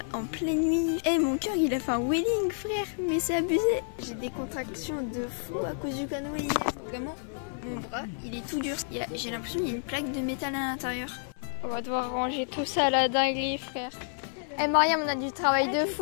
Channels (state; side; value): silent; right; 58 dB below the other